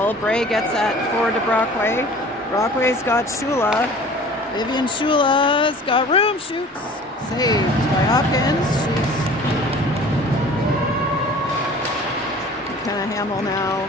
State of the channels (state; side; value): normal; both; correlation 0.45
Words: Bray gets that forward to Brockway. Brockway's got Shula. Vivian Shula's got room. Shoots. Saved by Hopkins. She's McKenna Hamill now